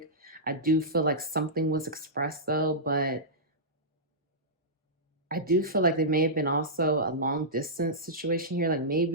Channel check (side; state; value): both; normal; correlation -0.14